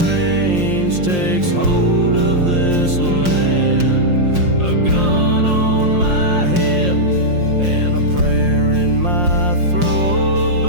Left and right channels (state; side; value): late; left; 5.6 ms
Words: range takes hold of this land. A gun on my hip and a prayer in my throat,